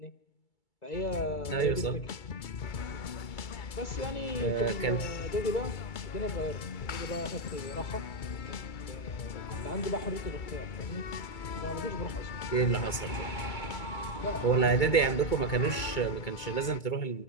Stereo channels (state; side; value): late; right; 2.3 ms